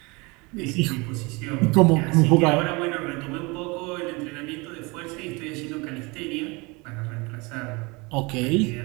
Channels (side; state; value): left; quieter; 26.7 dB